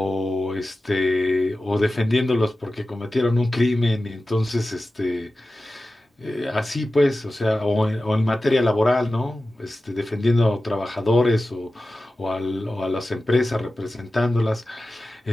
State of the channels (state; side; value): normal; both; correlation 0.95